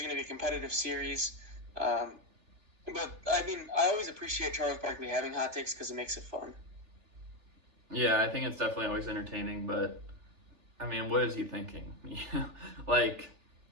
going to be a competitive series. But, I mean, I always appreciate Charles Barkley having hot takes because it makes it fun. Yeah, I think it's definitely always entertaining, but, I mean, what is he thinking? Like,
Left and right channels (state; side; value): late; left; 3.4 ms